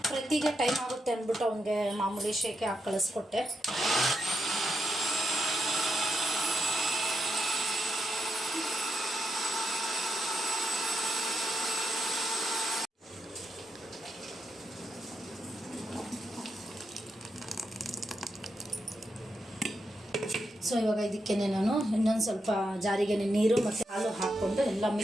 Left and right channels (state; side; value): normal; both; correlation 0.83